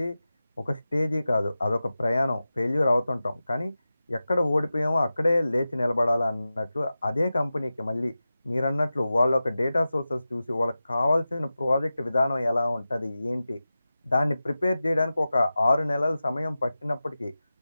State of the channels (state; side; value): inverted; both; correlation -0.94